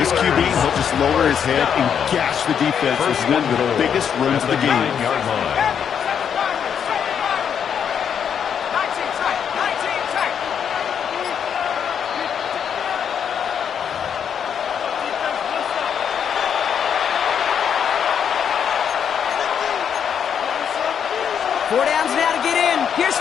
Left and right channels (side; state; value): right; quieter; 7.9 dB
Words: QB, he'll just lower his head and gash the defense with one of the biggest runs of the game. 4 downs now to get in. Here's